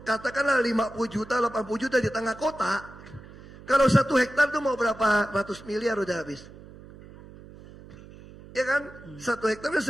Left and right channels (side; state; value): right; noise; hum, 19 dB below the sound